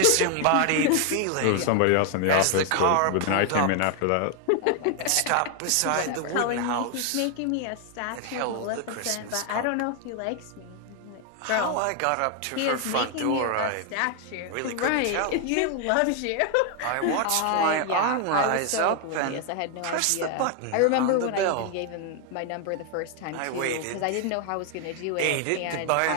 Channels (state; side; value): different; both; correlation 0.00